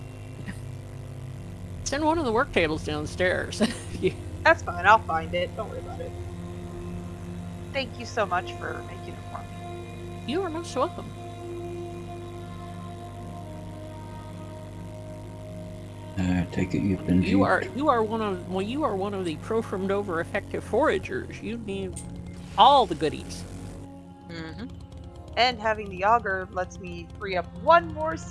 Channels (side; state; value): both; identical; correlation 1.00